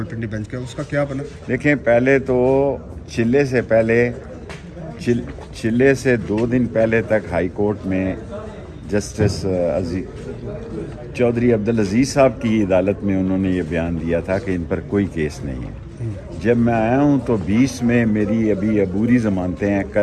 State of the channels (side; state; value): both; identical; correlation 1.00